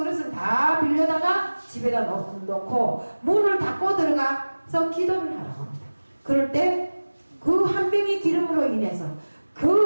다 빌려다가 집에다 놓고 문을 닫고 들어가서 기도를 하라고 합니다. 그럴 때 그 한 병의 기름으로 인해서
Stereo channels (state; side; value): inverted; both; correlation -1.00